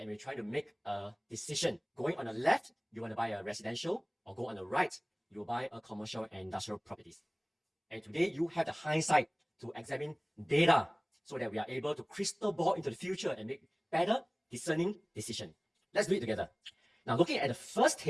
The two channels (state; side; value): identical; both; correlation 1.00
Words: we're trying to make a decision. Going on the left, you want to buy a residential, or go on the right, you buy a commercial and industrial properties. And today you have the hindsight to examine data so that we are able to crystal ball into the future and make better discerning decision. Let's do it together. Now, looking at the first